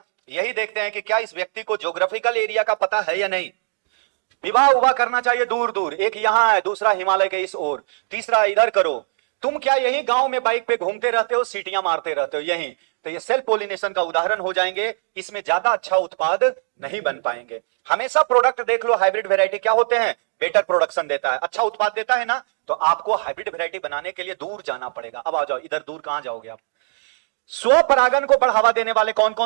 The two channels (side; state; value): left; silent; digital silence